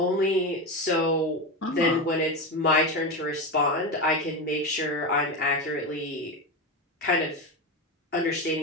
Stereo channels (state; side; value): normal; both; correlation 0.17